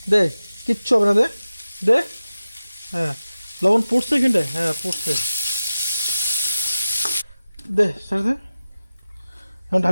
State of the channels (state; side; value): inverted; both; correlation -0.95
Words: দে কিচ্ছু হবে না, দে দে। হ্যাঁ লবণ পড়ছে এখানটায়, হ্যাঁ পড়ছে, দে ছেড়ে দে, এখন